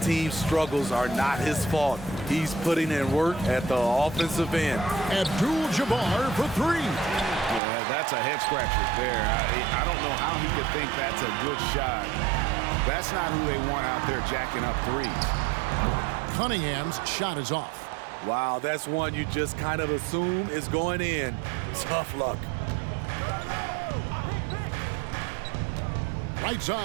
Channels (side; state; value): left; drops out; at 7.6 s